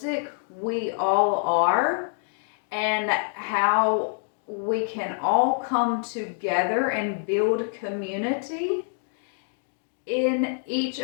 we all are and how we can all come together and build community in each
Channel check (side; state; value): right; silent; 61 dB below the other